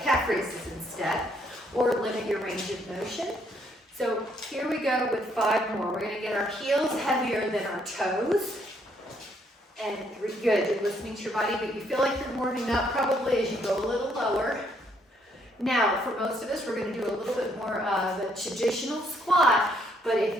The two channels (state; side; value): normal; both; correlation 0.70